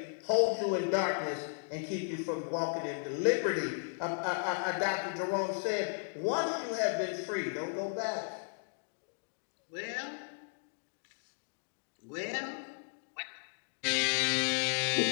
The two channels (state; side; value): silent; right; digital silence